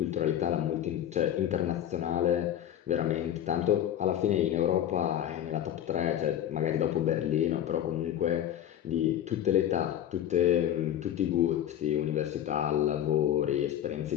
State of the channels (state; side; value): quieter; right; 11.0 dB